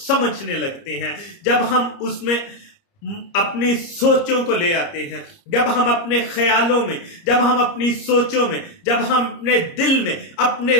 लगते हैं, जब हम उसमें अपनी सोचों को ले आते हैं, जब हम अपने ख्यालों में, जब हम अपनी सोचों में, जब हम अपने दिल में अपने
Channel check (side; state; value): right; late; 30 ms